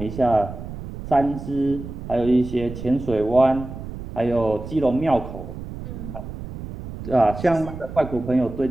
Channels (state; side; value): noise; right; rumble, 10 dB below the sound